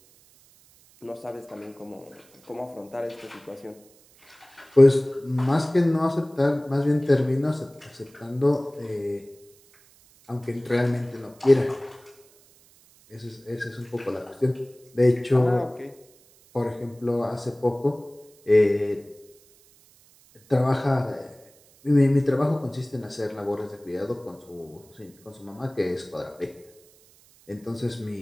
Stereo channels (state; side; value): noise; right; hiss, 29 dB below the sound